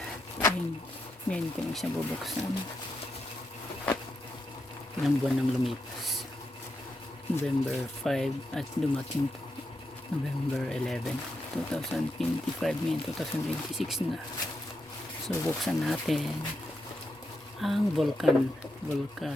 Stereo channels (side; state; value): both; normal; correlation 0.84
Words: Ngayon ko siya bubuksan. Ilang buwan nang lumipas. November 5 at dumating po November 11, 2025, ngayon 2026 na. So buksan natin ang